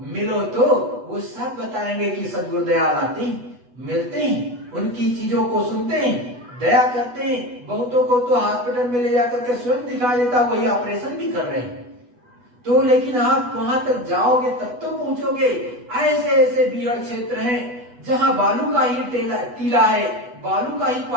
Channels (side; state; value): left; late; 8.2 ms